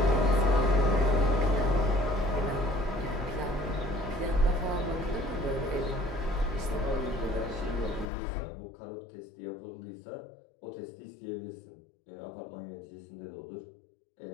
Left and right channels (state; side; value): drops out; right; at 8.1 s